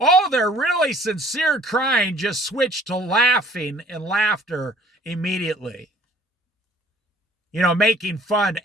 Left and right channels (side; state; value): both; normal; correlation 0.55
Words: their really sincere crying just switched to laughing and laughter immediately. Making fun